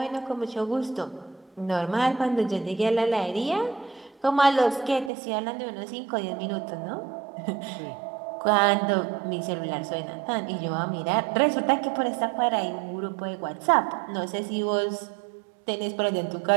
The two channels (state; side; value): drops out; left; at 5.1 s